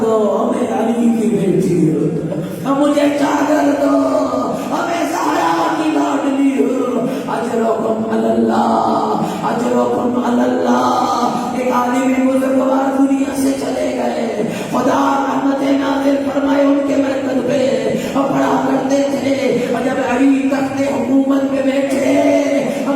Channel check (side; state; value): both; identical; correlation 1.00